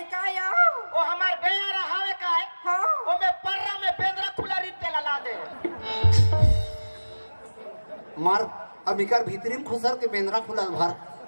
का या वो हमार बेयारा हावे का है हाँ वो में पर्रा में बेंद्रा खुला रीत के ला दे मार अबिकर भीतरी में खुसर के बेंद्रा खुलल भर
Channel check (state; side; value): inverted; both; correlation -1.00